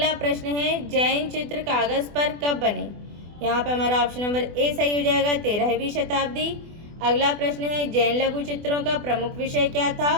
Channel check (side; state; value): left; late; 24 ms